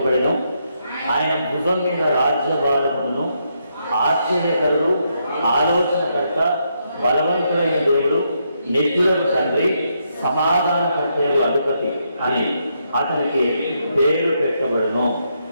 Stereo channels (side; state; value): both; inverted; correlation -0.78